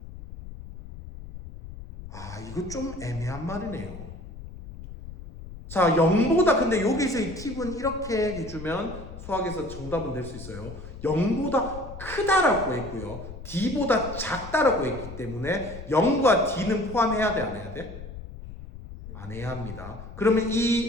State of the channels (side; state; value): left; noise; rumble, 13 dB below the sound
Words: 이거 좀 애매한 말이네요. 자, 0보다 근데 여기서의 팁은 이렇게 해주면 수학에서 정답은 될 수 있어요. 0보다 크다라고 했고요. D보다 작다라고 했기 때문에 0과 D는 포함해야 돼, 안 해야 돼? 안 해야 합니다. 그러면